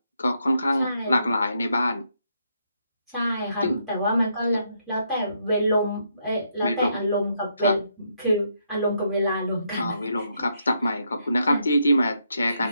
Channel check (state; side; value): inverted; both; correlation -0.76